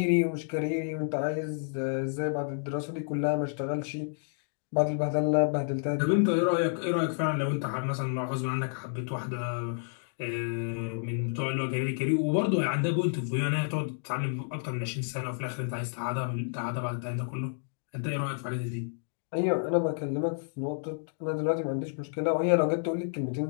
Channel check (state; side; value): silent; right; digital silence